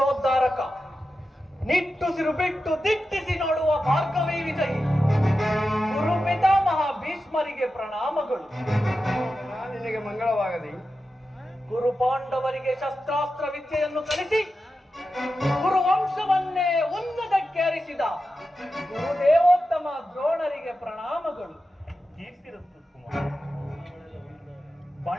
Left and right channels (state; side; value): normal; both; correlation 0.91